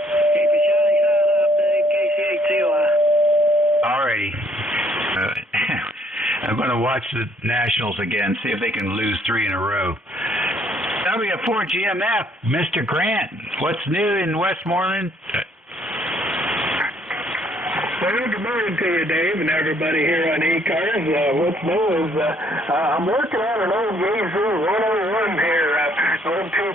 your shiny side up, Dave. KC8COI. All righty. I'm going to watch the Nationals again, see if they can lose 3 in a row. W4GMF, Mr. Grant, what's new in Westmoreland? Well, good morning to you, Dave, and everybody here on ECARS. What's new is I'm working on an old Yazoo 101 here, old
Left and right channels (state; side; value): normal; both; correlation 0.65